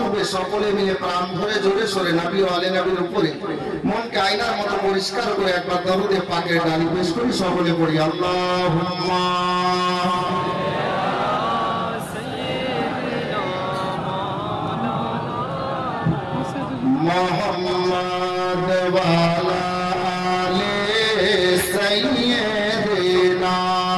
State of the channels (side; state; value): both; identical; correlation 1.00